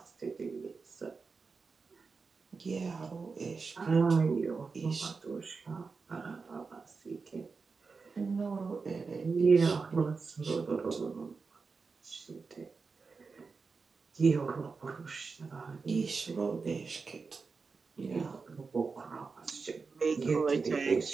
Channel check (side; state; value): left; quieter; 4.7 dB